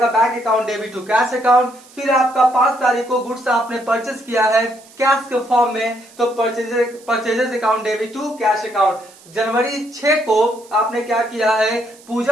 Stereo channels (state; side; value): noise; right; hiss, 25 dB below the sound